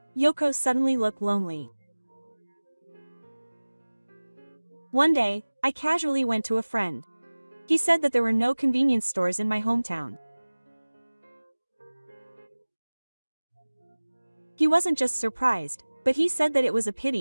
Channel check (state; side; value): inverted; both; correlation -1.00